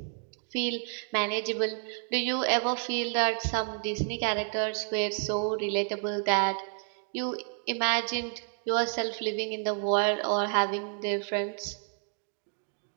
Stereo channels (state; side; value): silent; left; 58 dB below the other